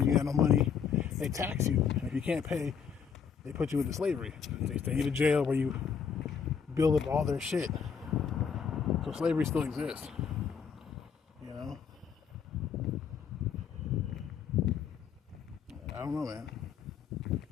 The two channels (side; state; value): right; quieter; 6.9 dB